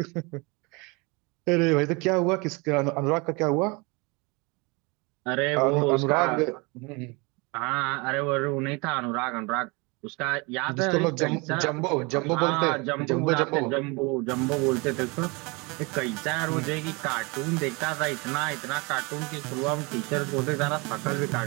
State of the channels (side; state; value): left; quieter; 27.9 dB